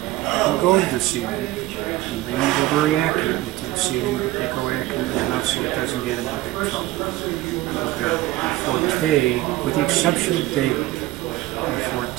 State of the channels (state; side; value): quieter; left; 17.2 dB